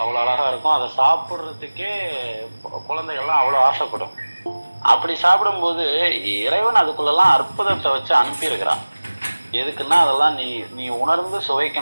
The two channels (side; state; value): both; inverted; correlation -1.00